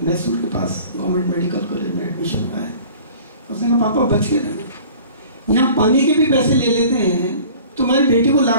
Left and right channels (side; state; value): both; inverted; correlation -0.46